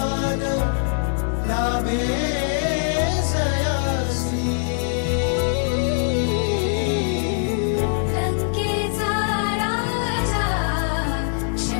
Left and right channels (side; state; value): right; silent; 64 dB below the other